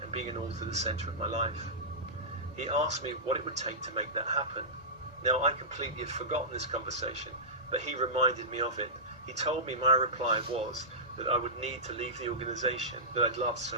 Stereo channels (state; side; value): normal; both; correlation -0.17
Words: and being an author the centre of my life. He asked me what it would take to make that happen. Now, I completely had forgotten this conversation, but he reminded me of it. He told me my reply was that I would need to leave the organisation that I'd loved so